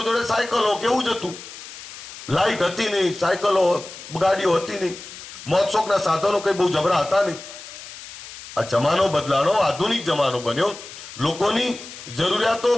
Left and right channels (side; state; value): left; noise; hiss, 14 dB below the sound